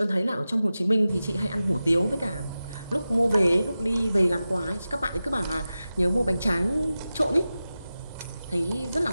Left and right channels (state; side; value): inverted; both; correlation -0.94